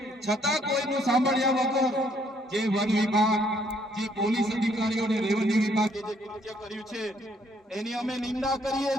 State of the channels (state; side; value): normal; both; correlation 0.67